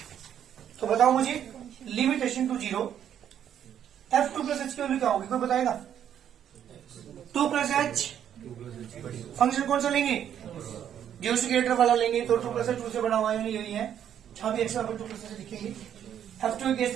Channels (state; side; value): quieter; left; 9.7 dB